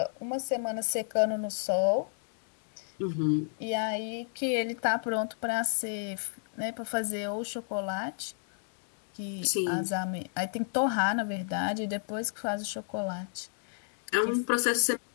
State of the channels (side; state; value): right; silent; digital silence